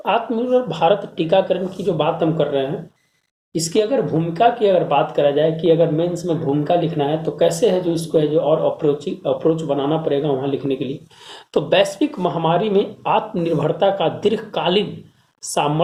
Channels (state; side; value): identical; both; correlation 1.00